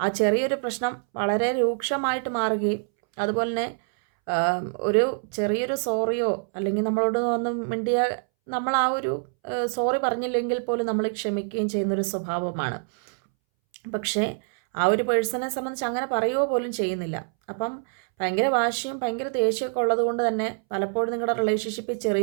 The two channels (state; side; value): silent; left; 61 dB below the other